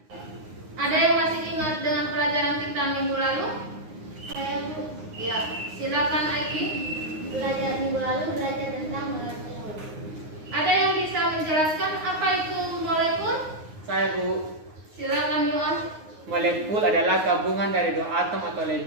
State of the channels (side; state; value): left; late; 9.6 ms